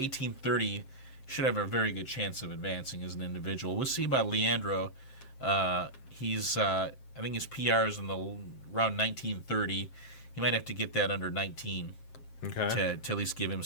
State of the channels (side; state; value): right; late; 7.6 ms